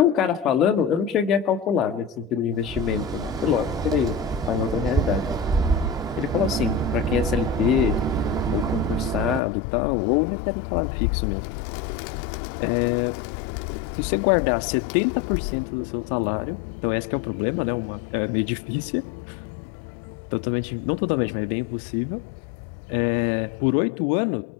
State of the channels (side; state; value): right; drops out; at 9.4 s